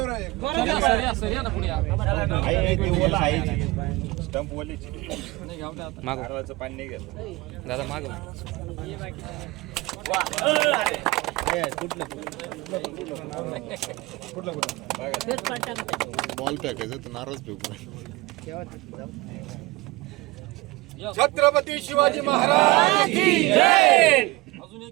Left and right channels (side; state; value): left; quieter; 21.4 dB